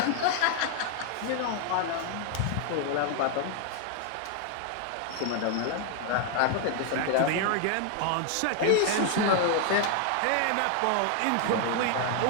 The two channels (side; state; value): both; different; correlation 0.00